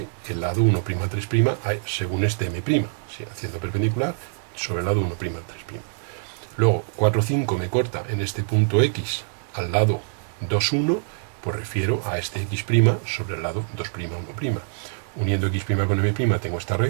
el lado 1', 3', según este M', ¿sí? Haciendo perpendicular sobre el lado 1', 3'. Luego 4, 5 me corta en este punto X al lado 2, 1, pues refiero a este X' sobre el lado 2', 1'. Uniendo X' con M' tengo esta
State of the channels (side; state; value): left; silent; digital silence